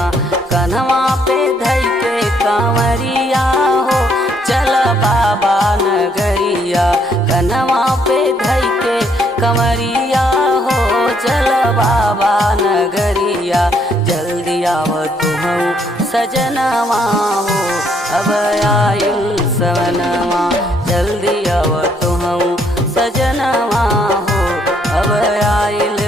कन्हवा पे धई के कंवरिया हो चल बाबा नगरिया। कन्हवा पे धई के कंवरिया हो चल बाबा नगरिया। जल्दी आव तू सजनवा हो अब आइल सवनवा। जल्दी आव तू सजनवा हो अब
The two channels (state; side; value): normal; both; correlation 0.69